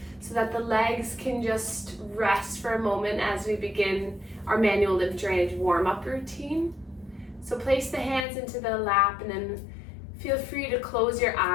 so that the legs can just rest for a moment as we begin our manual lymph drainage warm-up routine. So place the hands into the lap and then feel free to close your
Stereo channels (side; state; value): right; drops out; at 8.2 s